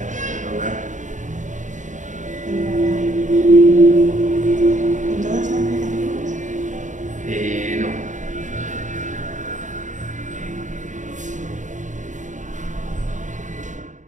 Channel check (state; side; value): late; left; 0.36 ms